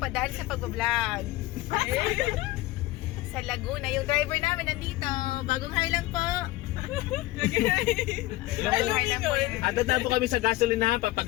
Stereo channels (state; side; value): quieter; right; 18.3 dB